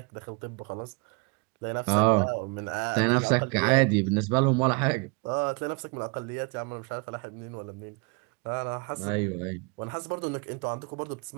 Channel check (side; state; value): left; quieter; 32.0 dB